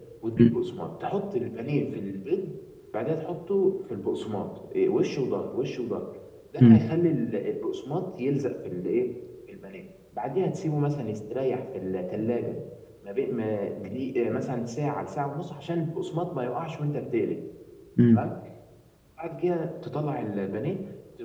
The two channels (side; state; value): both; identical; correlation 1.00